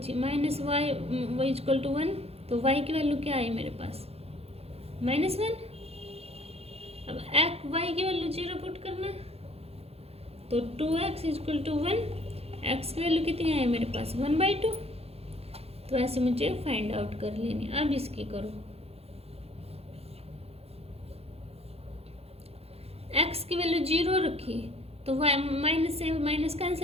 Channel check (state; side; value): late; left; 0.29 ms